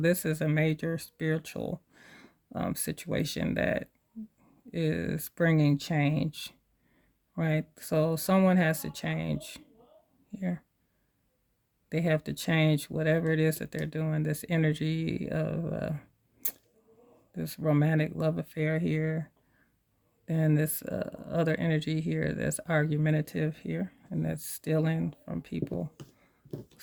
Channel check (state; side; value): identical; both; correlation 1.00